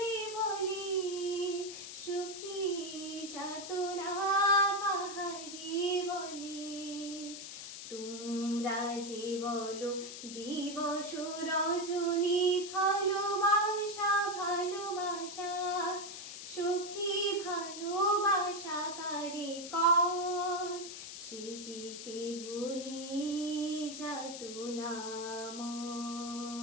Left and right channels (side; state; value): left; noise; hiss, 10 dB below the sound